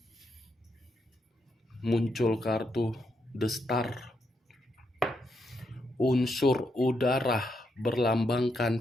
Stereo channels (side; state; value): both; normal; correlation 0.80